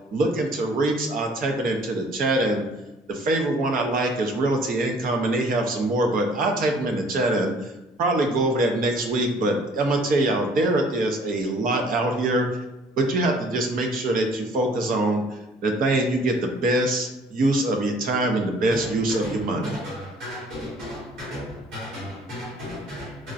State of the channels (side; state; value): both; normal; correlation 0.56